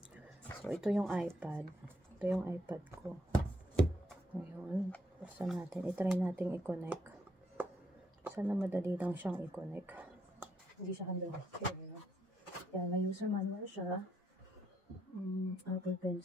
So, ito yung iPad. Ito yung iPad ko. Ngayon, basta natin. I-try natin i-connect. Sana madali lang siyang i-connect. Hindi siya hanggang here. Kaya may user manual siya. Apple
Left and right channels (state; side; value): normal; both; correlation 0.75